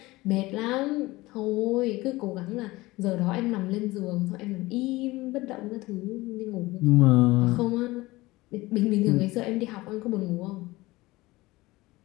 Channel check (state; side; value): quieter; right; 20.1 dB